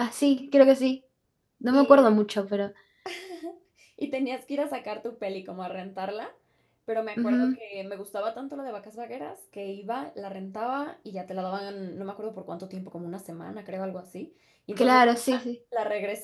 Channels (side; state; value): both; identical; correlation 1.00